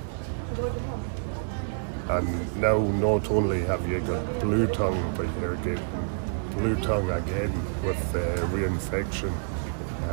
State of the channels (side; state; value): left; silent; digital silence